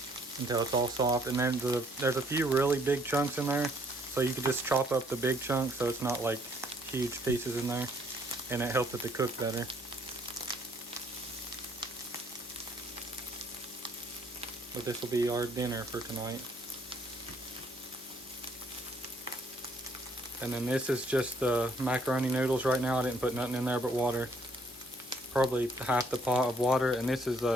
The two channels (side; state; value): both; normal; correlation 0.65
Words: until it's all soft. And then there's a few really big chunks in there, so you can just chop up the big chunks so it's not like huge pieces in there, and it helps it to cook better. But this will be our dinner for tonight. And then this is just the macaroni noodles right now. I didn't put nothing in there but water. Probably half the pot of water. And this is